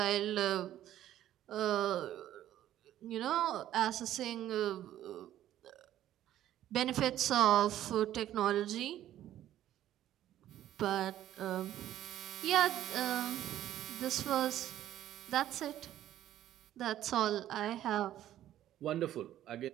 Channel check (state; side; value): quieter; left; 12.5 dB